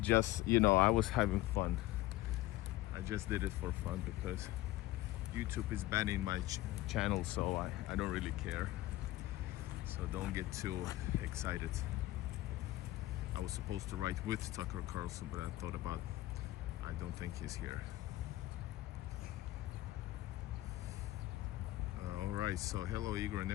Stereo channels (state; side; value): quieter; right; 16.7 dB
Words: Just, you know, I was having fun. I just did it for fun because YouTube is banning my channel, so I don't really care. So don't get too excited. I was supposed to write with Tucker Carlson, but I thought about, I don't think he's here. Alright, so hello Igor and